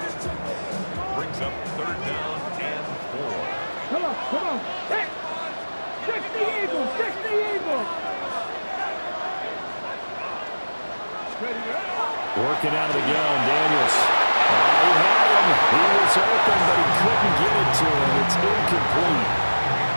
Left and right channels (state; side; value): inverted; both; correlation -1.00